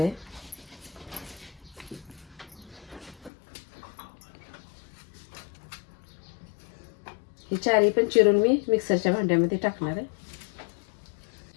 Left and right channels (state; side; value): drops out; right; at 3.3 s